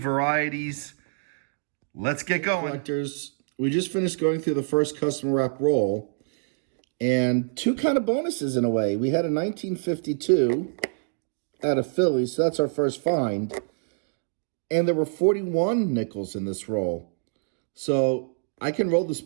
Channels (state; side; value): silent; left; digital silence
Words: Let's get going. Collectors, we just finished going through the first customer wrap roll, and 2 kind of bonuses in a way. We had a 1952 out of Philly, so that's our first find. And there were 41 nickels in this roll. So I can roll this